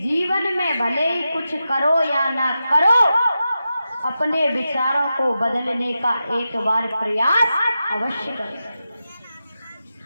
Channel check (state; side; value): inverted; both; correlation -0.91